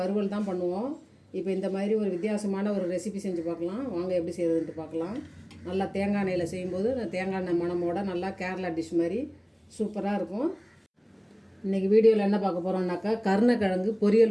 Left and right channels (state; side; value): identical; both; correlation 1.00